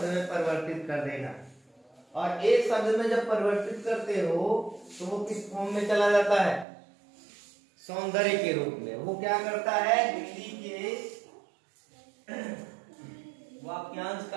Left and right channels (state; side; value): drops out; left; at 6.7 s